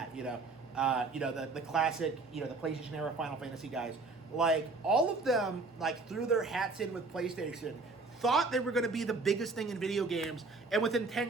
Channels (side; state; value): left; quieter; 3.6 dB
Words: the classic, the PlayStation era Final Fantasy guys, like all of them like threw their hats in with PlayStation, thought they were going to be the biggest thing in video games, and within